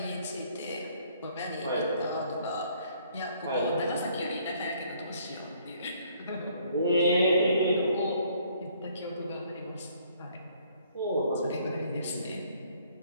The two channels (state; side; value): inverted; both; correlation -0.63